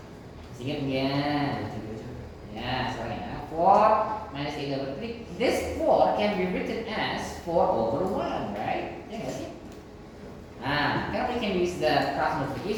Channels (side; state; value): both; identical; correlation 1.00